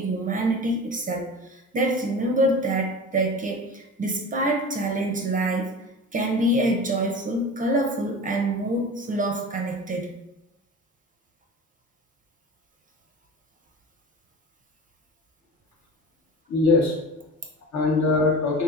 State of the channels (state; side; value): normal; both; correlation 0.34